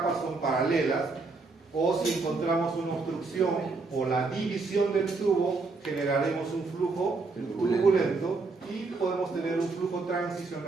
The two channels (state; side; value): quieter; left; 3.9 dB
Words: son paralelas, o si encontramos una obstrucción o la división del tubo, generaremos un flujo turbulento y podemos tener un flujo